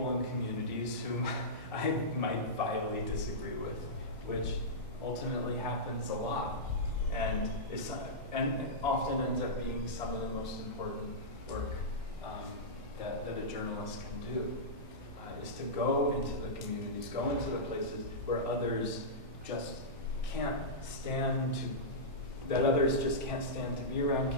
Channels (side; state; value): both; normal; correlation -0.14